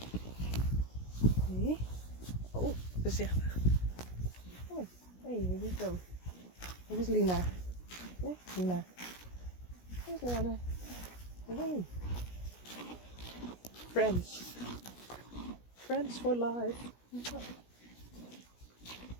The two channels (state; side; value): late; right; 17 ms